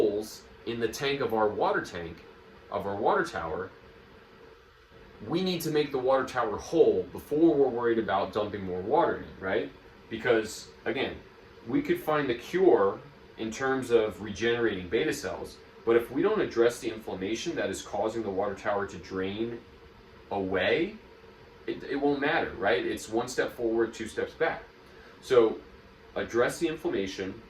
in the tank, of our water tower, we need to make the water tower whole before we're worried about dumping more water in, right? Because, again, we could find the cure in terms of regenerating beta cells, but if we don't address the inflammation that is causing the water tower to drain away, it won't matter, right? It's one step forward, two steps back. So address the inflammation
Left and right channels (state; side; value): identical; both; correlation 1.00